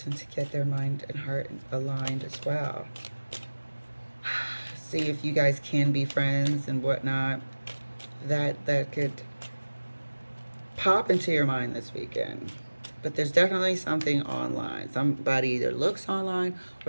to get their mind and heart aligned as well. See if you guys can be friends and whatnot. That could pop into your mind this weekend. But there's definitely something online. Somebody either looks online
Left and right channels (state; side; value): inverted; both; correlation -1.00